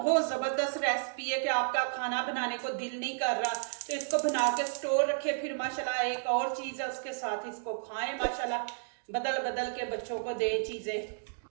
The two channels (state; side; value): silent; left; digital silence